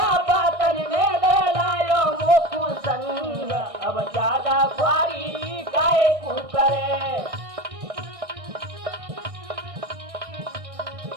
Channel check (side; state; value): left; late; 1.6 ms